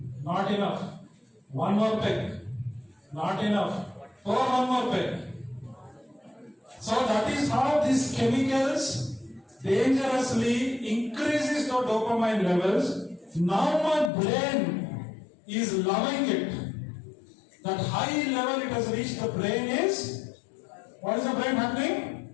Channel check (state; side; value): drops out; right; at 14.1 s